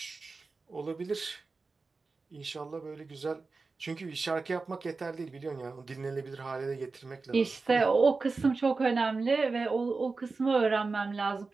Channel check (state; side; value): quieter; left; 4.1 dB